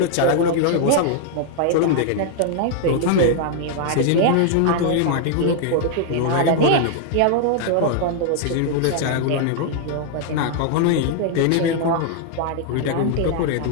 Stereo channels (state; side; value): different; both; correlation 0.00